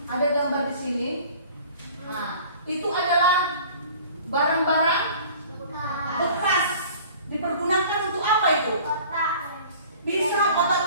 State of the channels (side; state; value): both; inverted; correlation -0.47